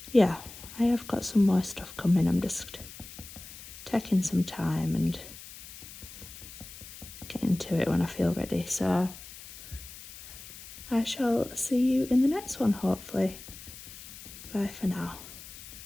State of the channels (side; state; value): left; noise; hiss, 15 dB below the sound